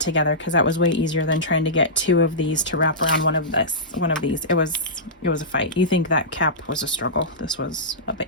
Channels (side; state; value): both; normal; correlation -0.16